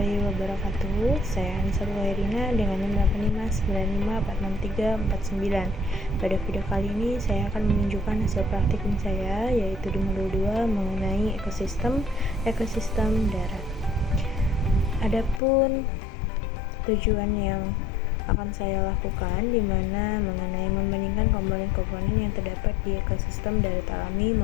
wabarakatuh. Saya Anissa Wairina dengan nomor 8595463469. Pada video kali ini saya akan menunjukkan hasil praktikum saya, yaitu di modul 2 mengenai ekosistem darat. Adapun tujuan yang akan saya lakukan di mana mengenai membandingkan komponen-komponen yang terdapat di ekosistem darat alami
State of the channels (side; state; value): right; drops out; at 15.4 s